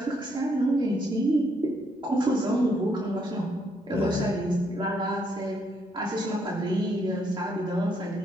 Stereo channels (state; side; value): normal; both; correlation 0.73